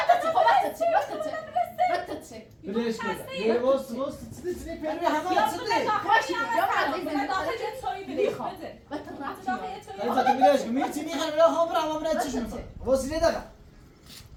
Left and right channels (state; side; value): identical; both; correlation 1.00